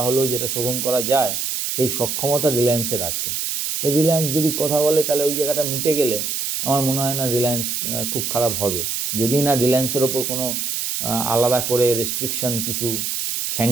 হলেও যেটা শোধন করা যায়, সেই সক্ষমতা রিলায়েন্সের আছে। তো রিলায়েন্স যদি কথা বলে তাহলে ওই জায়গাটা মিটে গেলে আমার মনে হয় না রিলায়েন্স খুব খারাপ হবে। যদি না রিলায়েন্সের ওপর কোনো আলাদা করে রেস্ট্রিকশন, কিছু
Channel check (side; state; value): right; noise; hiss, 2 dB below the sound